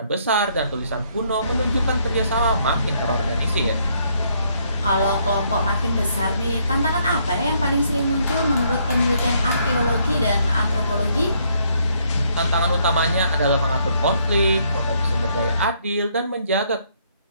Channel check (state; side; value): inverted; both; correlation -0.70